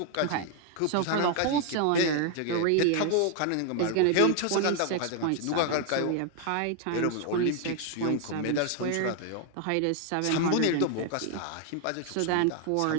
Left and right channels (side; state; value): both; different; correlation 0.00